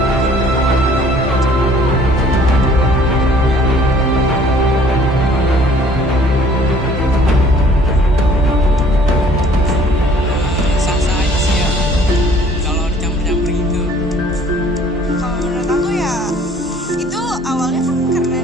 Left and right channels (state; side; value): normal; both; correlation 0.56